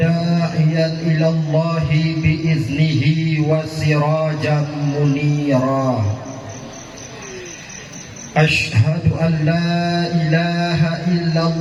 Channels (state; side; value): identical; both; correlation 1.00